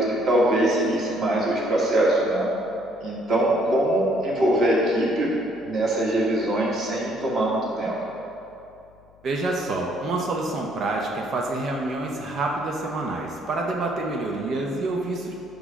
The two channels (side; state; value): left; noise; hum, 28 dB below the sound